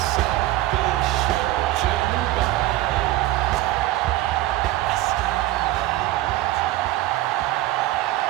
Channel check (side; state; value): left; quieter; 16.3 dB